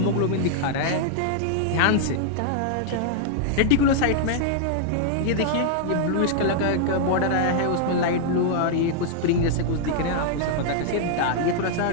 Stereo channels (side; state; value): both; different; correlation -0.01